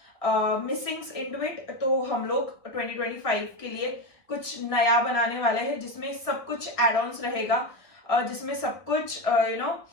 missings into it, तो हम लोग 2025 के लिए कुछ नया बनाने वाले हैं जिसमें सब कुछ एड ऑन्स रहेगा, जिसमें सब कुछ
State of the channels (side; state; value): right; late; 1.6 ms